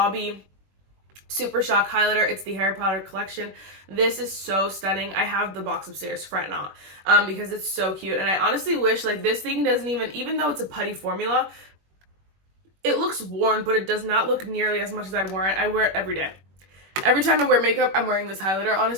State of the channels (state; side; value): late; left; 21 ms